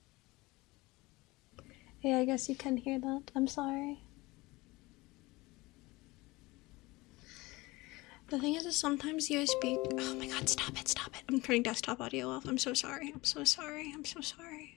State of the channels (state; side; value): quieter; right; 21.8 dB